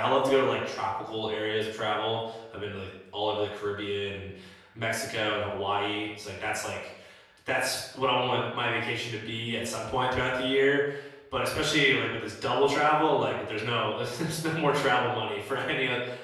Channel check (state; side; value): identical; both; correlation 1.00